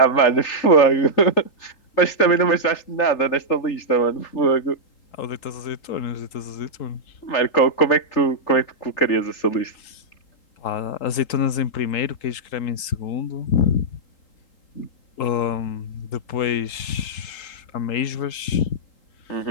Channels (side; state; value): right; late; 3.8 ms